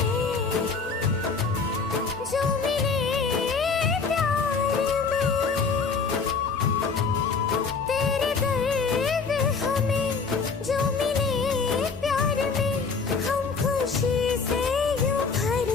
जो मिले प्यार में, तेरे दर्द हमें जो मिले प्यार में, हम खुशी से यूं भर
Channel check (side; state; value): right; quieter; 5.0 dB